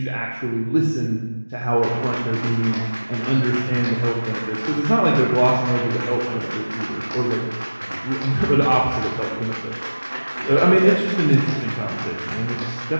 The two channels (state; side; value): inverted; both; correlation -1.00